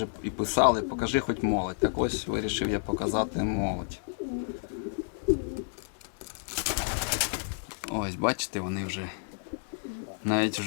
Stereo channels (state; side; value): silent; right; digital silence